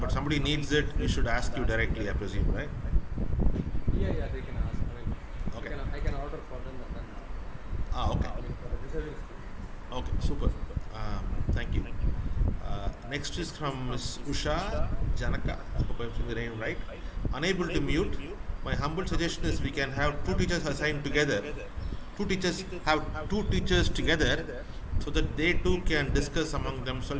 but somebody needs it, we should ask you directly, I presume, right? Yeah, they can ask. Okay. I can order for them and then Okay. for the deserving students. Okay, super. Thank you. Next is from Ms. Usha Janaka. I hope I'm saying the name right. Unable to mute. My humble suggestion is we can have two teachers assigned together. Two teachers have two teachers together so that they too can discuss among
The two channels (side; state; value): both; identical; correlation 1.00